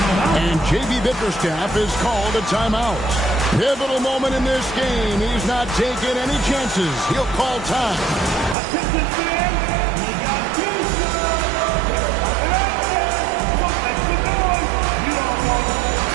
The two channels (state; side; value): drops out; left; at 8.6 s